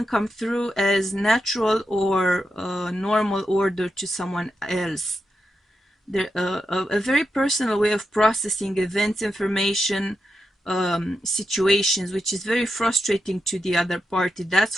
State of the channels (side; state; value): both; normal; correlation 0.87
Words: come through as natural or normal order to someone else. There, a very personal way of processing events, information, situations, which is very frustrating to the other party, that's